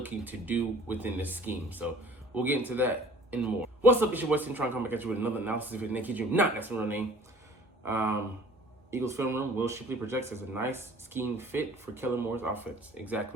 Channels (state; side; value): normal; both; correlation 0.50